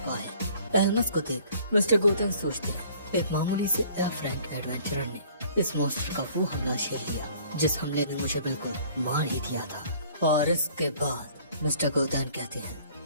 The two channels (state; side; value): inverted; both; correlation -0.55